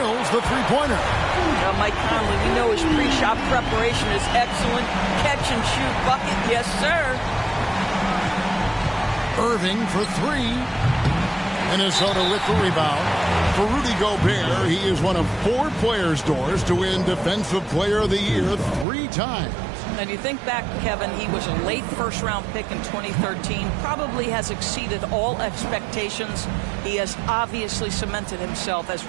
the three-pointer. Now, Mike Conley, we know his pre-shot preparation is excellent. Catch and shoot bucket, yes, sir. Irving for 3. Minnesota with the rebound. For Rudy Gobert, he is one of 4 players, Doors, to win Defensive Player of the Year 3 times. And you think back, Kevin, he was a late first-round pick in 2013, probably has exceeded all expectations. He has obviously cemented himself as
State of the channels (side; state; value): left; drops out; at 18.9 s